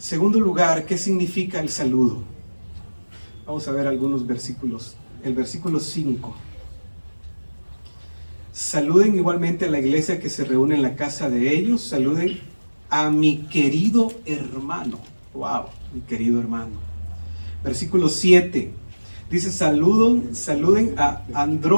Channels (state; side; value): inverted; both; correlation -1.00